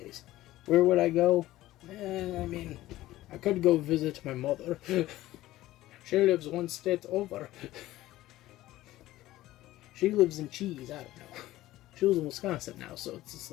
Where would I go? I mean, I could go visit my mother. She lives one state over. She lives in cheese, I don't know. She lives in Wisconsin now, so it's just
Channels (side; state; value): right; quieter; 15.9 dB